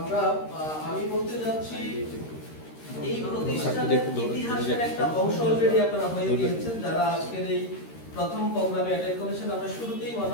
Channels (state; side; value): late; right; 13 ms